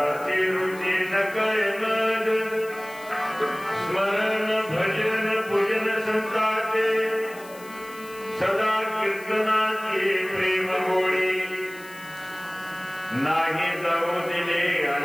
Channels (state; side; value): noise; left; hiss, 20 dB below the sound